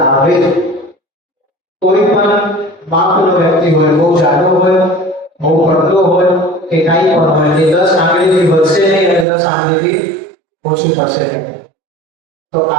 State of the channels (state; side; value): drops out; left; at 9.2 s